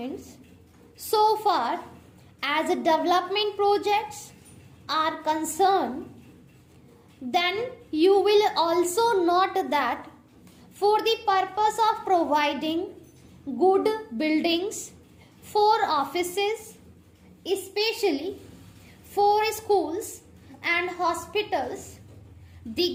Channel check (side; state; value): both; identical; correlation 1.00